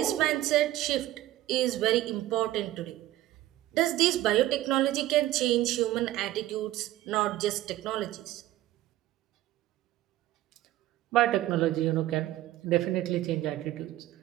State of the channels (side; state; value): left; quieter; 15.1 dB